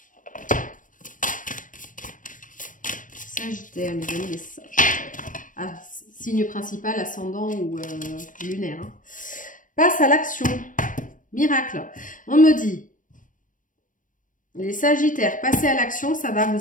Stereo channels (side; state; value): right; late; 0.38 ms